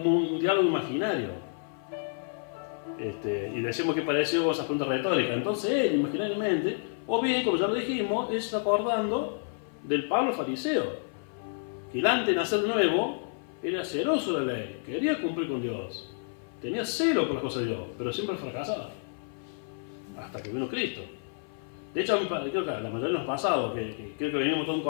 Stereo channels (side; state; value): right; silent; 56 dB below the other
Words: un diálogo imaginario. Y decimos que pareció esas preguntas retóricas. Entonces él, imaginariamente, o bien, como ya lo dijimos, es acordando del Pablo fariseo, que él antes de nacer nuevo era celoso de la ley, quería cumplir con Dios, tenía celo por las cosas de Dios, pero siempre fracasaba, hasta que vino Cristo. De hecho, creo que la mayoría de los pasados, que creo que venimos de un